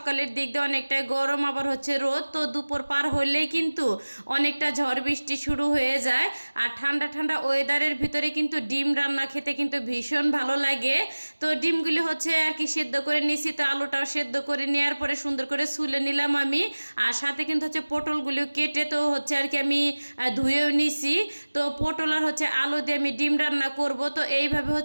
দিক দিয়ে অনেকটা গরম, আবার হচ্ছে রোদ, তো দুপুর পার হলেই কিন্তু অনেকটা ঝড় বৃষ্টি শুরু হয়ে যায়। আর ঠান্ডা ঠান্ডা ওয়েদারের ভিতরে কিন্তু ডিম রান্না খেতে কিন্তু ভীষণ ভালো লাগে। তো ডিমগুলি হচ্ছে আর কি সেদ্ধ করে নিছি, তো আলুটাও সেদ্ধ করে নেওয়ার পরে সুন্দর করে ছুলে নিলাম আমি। আর সাথে কিন্তু হচ্ছে পটলগুলিও কেটে তো হচ্ছে আর কি আমি ধুয়েও নিছি। তো পটল আর হচ্ছে আলু দিয়ে আমি ডিম রান্না করব। তো এইভাবে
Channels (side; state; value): both; inverted; correlation -1.00